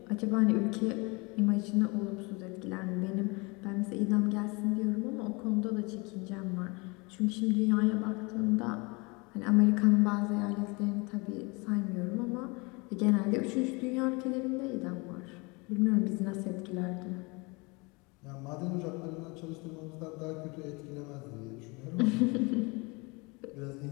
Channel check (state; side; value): quieter; right; 27.8 dB